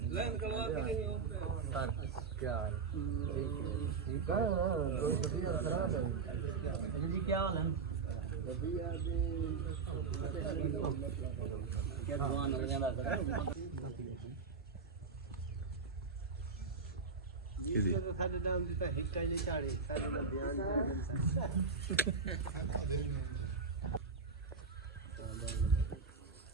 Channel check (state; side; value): quieter; left; 5.0 dB